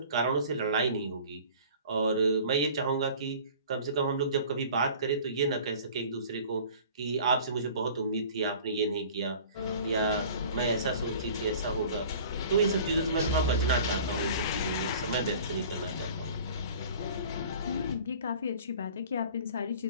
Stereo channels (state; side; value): inverted; both; correlation -0.45